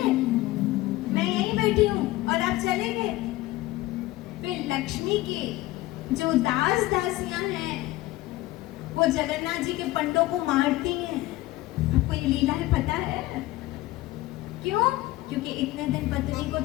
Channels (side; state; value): right; quieter; 17.7 dB